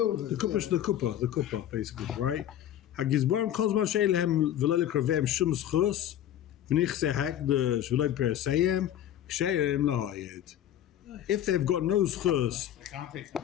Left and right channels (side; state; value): right; quieter; 11.3 dB